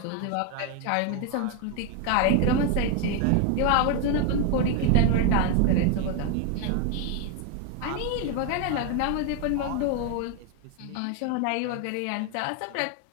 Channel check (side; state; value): both; different; correlation 0.01